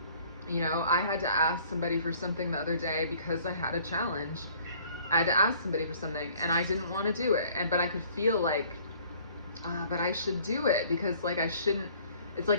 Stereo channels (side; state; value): both; inverted; correlation -0.56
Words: You know, I had to ask somebody for something the other day because I had a challenge. I had to ask somebody for something, and I didn't want to do it. But I could feel like, but I should do it, because like I shouldn't. It's